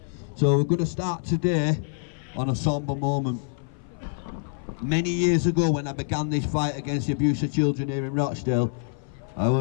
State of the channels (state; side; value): silent; right; 58 dB below the other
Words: So we're going to start today on a sombre moment. Many years ago when I began this fight against the abuse of children here in Rochdale, I